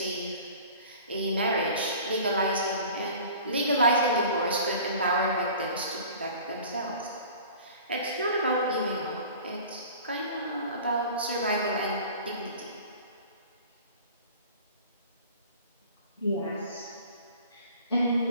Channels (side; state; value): both; inverted; correlation -0.43